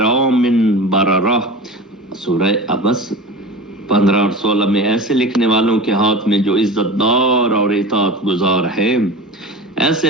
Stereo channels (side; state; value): both; normal; correlation 0.32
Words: بررہ. سورہ عبس 15 اور 16 میں ایسے لکھنے والوں کے ہاتھ میں جو عزت دار اور اطاعت گزار ہے، ایسے